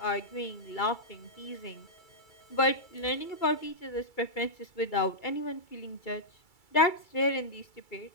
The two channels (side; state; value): right; late; 2.3 ms